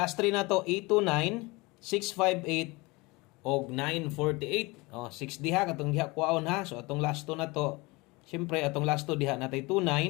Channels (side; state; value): right; quieter; 24.4 dB